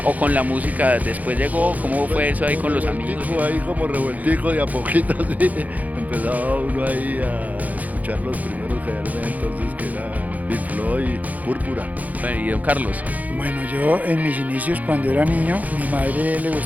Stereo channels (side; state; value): left; late; 0.078 ms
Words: o con la música después llegó, ¿cómo fue eso ahí con los amigos? Ahí como revueltico de a poquito, sí, empezaba uno ahí a escuchar los primeros que eran entonces, que eran Pink Floyd, Púrpura. Bueno, y don Carlos. Bueno, yo en mis inicios cuando era niño, mi madre le